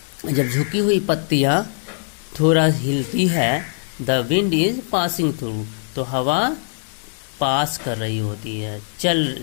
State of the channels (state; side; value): silent; right; digital silence